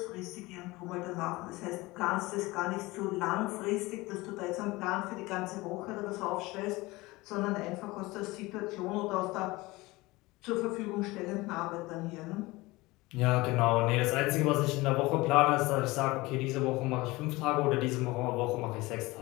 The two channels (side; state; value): right; quieter; 21.4 dB